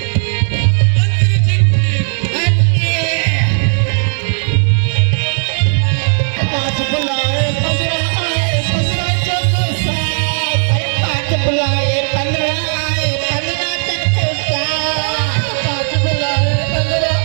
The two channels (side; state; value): left; silent; digital silence